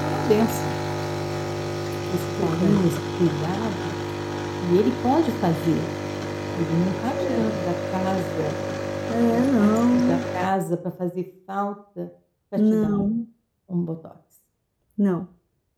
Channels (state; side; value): identical; both; correlation 1.00